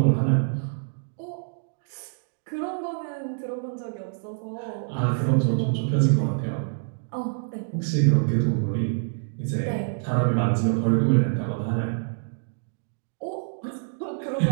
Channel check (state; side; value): silent; left; digital silence